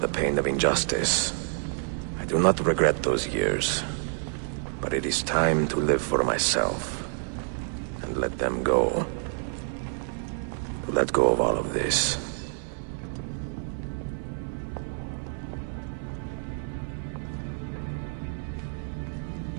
pain of injustice. I do not regret those years, but it is time to live for myself, and let them go. To let go of all of this.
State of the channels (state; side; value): silent; left; 59 dB below the other